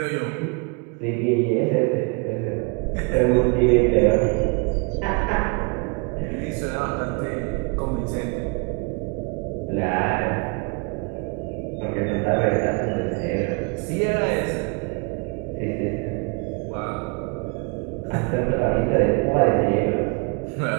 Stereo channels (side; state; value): left; quieter; 32.3 dB